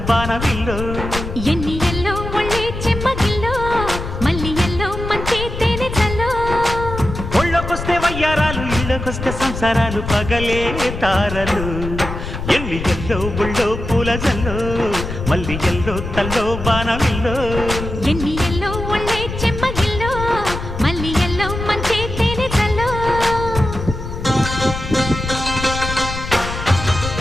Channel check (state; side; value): noise; left; rumble, 7 dB below the sound